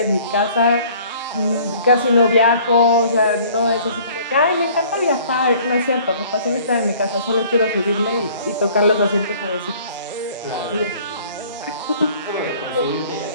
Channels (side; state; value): both; inverted; correlation -0.53